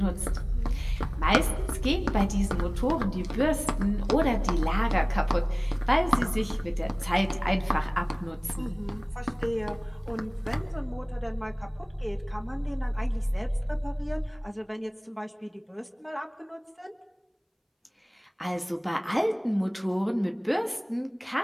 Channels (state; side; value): identical; both; correlation 1.00